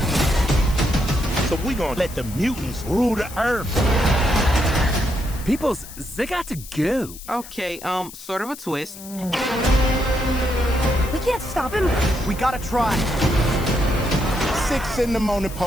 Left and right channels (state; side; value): noise; left; hiss, 15 dB below the sound